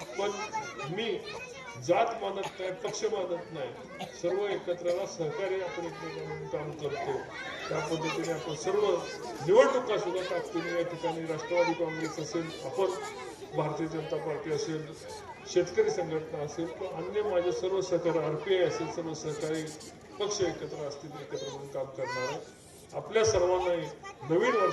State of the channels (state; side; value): identical; both; correlation 1.00